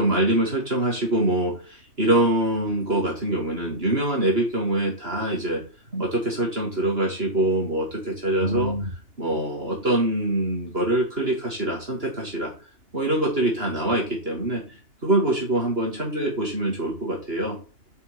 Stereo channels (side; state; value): left; late; 2.9 ms